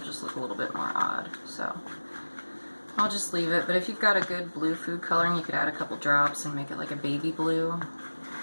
look a little bit more odd, so I'll just leave it. But if you've got a good blue food coloring, you could add a couple drops and make it like a baby blue,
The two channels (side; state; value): both; inverted; correlation -1.00